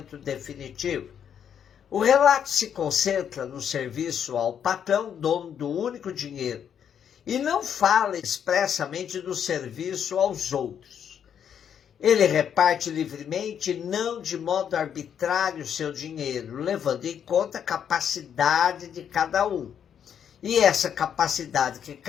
definitivo. O relato se concentra no serviço ao patrão, dono do único dinheiro, e não fala expressamente do serviço aos outros. Ele reparte livremente, não de modo arbitrário, seu dinheiro, levando em conta a capacidade de cada um. E essa capacidade que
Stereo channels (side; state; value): right; quieter; 8.5 dB